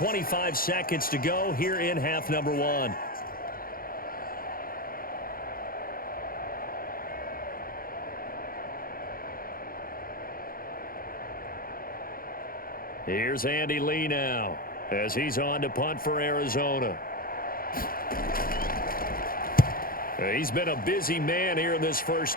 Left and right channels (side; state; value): right; late; 0.42 ms